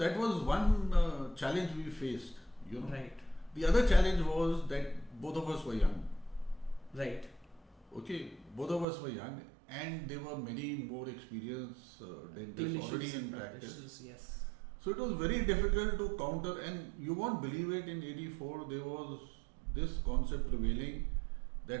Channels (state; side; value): drops out; left; at 8.8 s